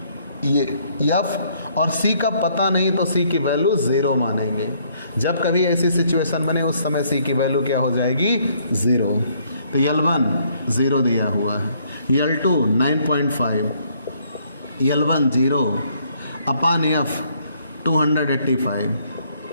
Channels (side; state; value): both; inverted; correlation -0.67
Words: ये F और C का पता नहीं तो C की वैल्यू 0 मानेंगे। जब कभी ऐसी सिचुएशन बने उस समय C की वैल्यू क्या हो जाएगी 0। तो L1 0 दिया हुआ है, L2 9.5, L1 0 अपान F 285